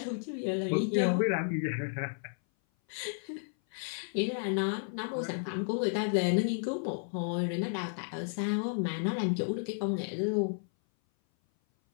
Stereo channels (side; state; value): right; silent; 56 dB below the other